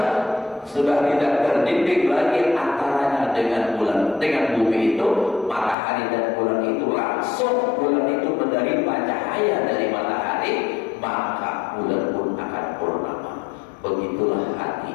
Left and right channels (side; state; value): right; drops out; at 5.8 s